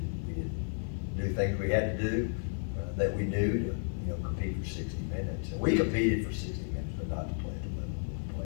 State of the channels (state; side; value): silent; right; 56 dB below the other